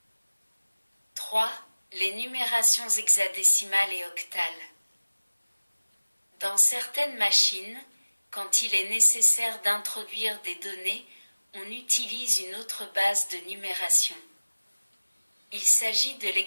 3. Les numérations hexadécimales et octales. Dans certaines machines, quand il est nécessaire d'introduire des données, on utilise une autre base de numération. Il s'agit de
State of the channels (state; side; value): inverted; both; correlation -1.00